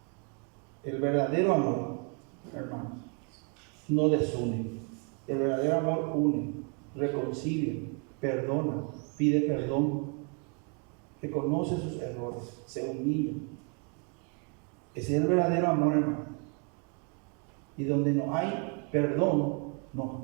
El verdadero amor, hermanos, no desune. El verdadero amor une, reconcilia, perdona, pide perdón, reconoce sus errores, se humilla. Ese es el verdadero amor, hermano. Y donde no hay perdón, no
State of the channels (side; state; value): left; quieter; 37.5 dB